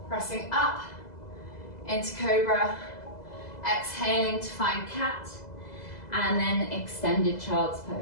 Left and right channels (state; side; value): late; right; 2.0 ms